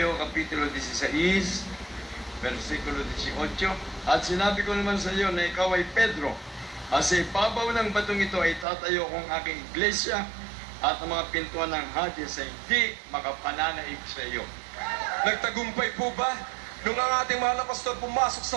Kapitulo 16, versikulo 18. At sinabi ko naman sa iyo na ikaw ay Pedro, at sa ibabaw ng batong ito ay tatayo kong aking iglesia, at ang mga pintuan ng Hades ay hindi makapananaig sa iyo. Nagtagumpay po ba nung ang ating mahal na pastor pumasok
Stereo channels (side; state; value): left; drops out; at 8.7 s